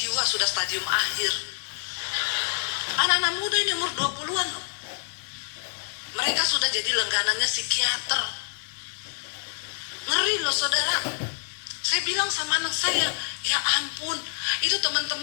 sudah stadium akhir. Anak-anak muda ini umur 20-an loh. Mereka sudah jadi langganannya psikiater. Ngeri loh saudara. Saya bilang sama anak saya, ya ampun, itu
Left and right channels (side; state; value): right; silent; digital silence